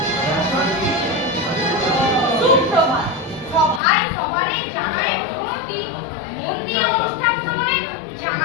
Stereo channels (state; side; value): drops out; right; at 3.8 s